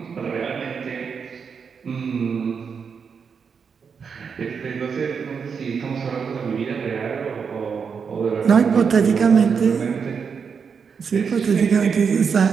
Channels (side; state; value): left; quieter; 6.2 dB